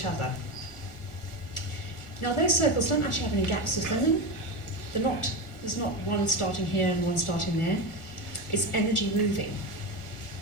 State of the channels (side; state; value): right; late; 1.4 ms